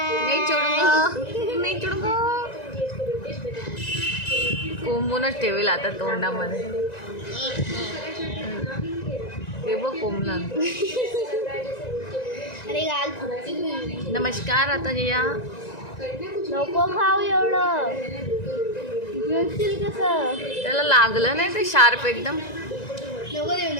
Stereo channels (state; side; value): late; right; 1.9 ms